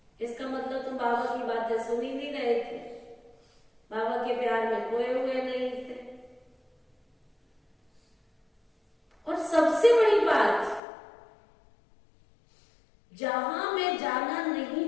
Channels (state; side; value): drops out; right; at 10.8 s